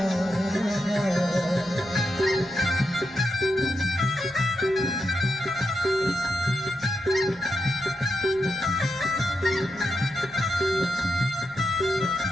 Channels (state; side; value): noise; left; rumble, 27 dB below the sound